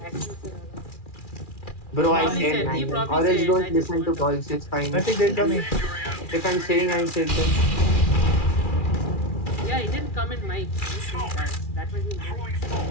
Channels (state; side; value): late; right; 2.4 ms